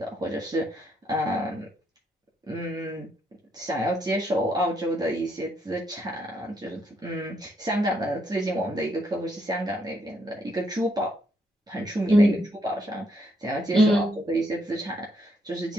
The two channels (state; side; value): normal; both; correlation 0.74